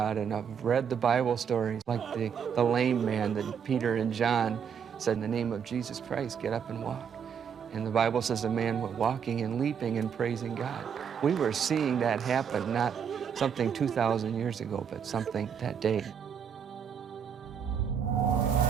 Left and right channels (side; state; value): left; quieter; 7.5 dB